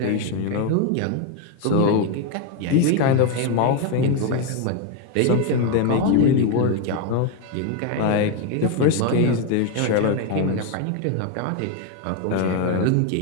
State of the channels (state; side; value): different; both; correlation 0.02